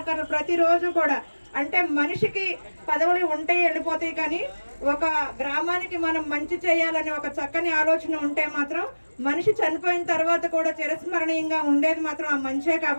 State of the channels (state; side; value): inverted; both; correlation -1.00